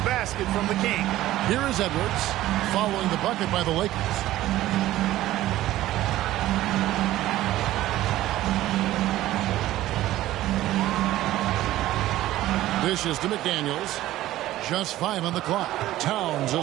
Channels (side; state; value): left; quieter; 15.0 dB